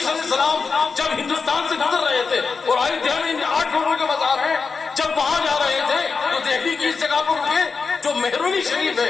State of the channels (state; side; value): quieter; right; 4.9 dB